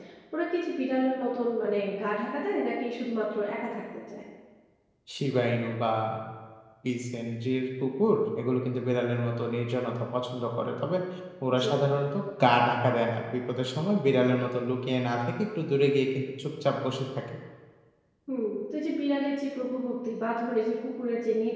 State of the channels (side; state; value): both; identical; correlation 1.00